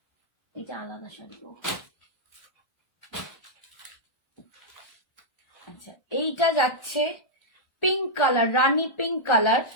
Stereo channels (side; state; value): right; late; 1.4 ms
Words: এটা আলাদা শাড়ি। আচ্ছা, এইটা যাচ্ছে পিঙ্ক কালার, রানী পিঙ্ক কালার।